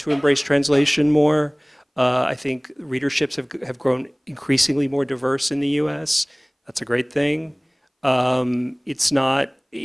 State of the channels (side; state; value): both; identical; correlation 1.00